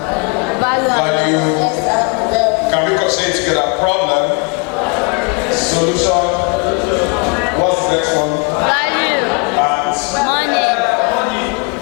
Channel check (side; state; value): right; quieter; 33.0 dB